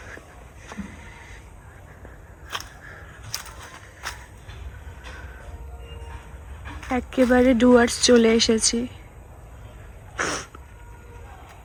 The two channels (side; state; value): both; identical; correlation 1.00